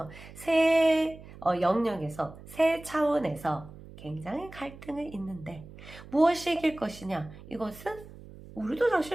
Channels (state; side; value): noise; right; hum, 17 dB below the sound